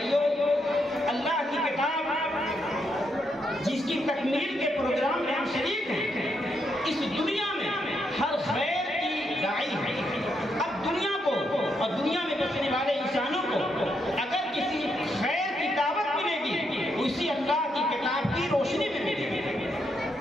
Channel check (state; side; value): normal; both; correlation 0.79